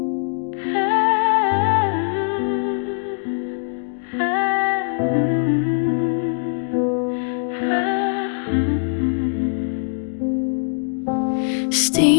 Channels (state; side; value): silent; right; digital silence